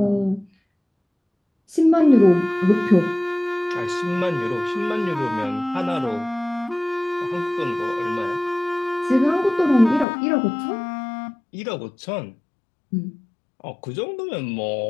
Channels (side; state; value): right; drops out; at 10.1 s